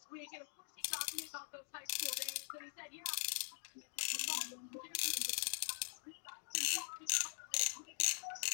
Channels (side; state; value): right; silent; digital silence